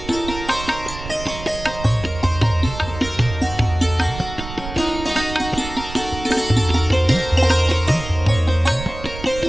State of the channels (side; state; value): right; noise; rumble, 11 dB below the sound